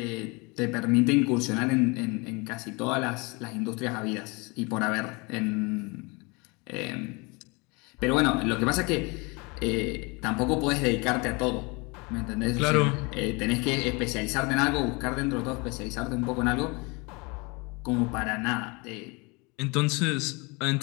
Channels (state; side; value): quieter; right; 28.1 dB